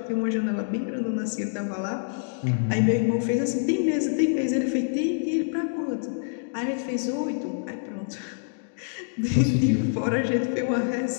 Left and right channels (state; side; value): silent; right; digital silence